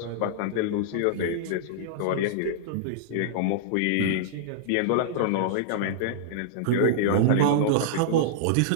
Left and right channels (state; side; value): different; both; correlation -0.02